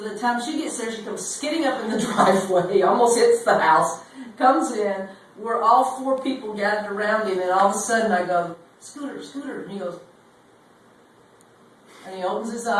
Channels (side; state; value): both; identical; correlation 1.00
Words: time she gets there, she comes skidding up in the driveway, almost hits the house, comes in. We're all 4 people gathered around him, and all of a sudden I go, "Scooter, Scooter," and he goes, and he opens his